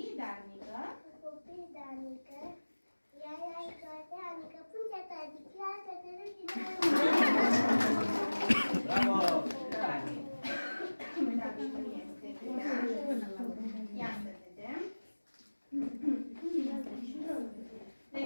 darnică. Copii de anică, ea e toate anică, punte ta, diclează, te râdi de Bravo! Uitați cum este bine. Ia să vedem. Ne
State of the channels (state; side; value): inverted; both; correlation -1.00